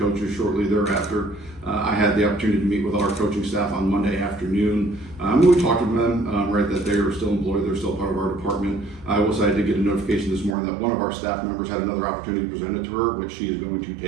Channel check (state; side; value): drops out; left; at 10.6 s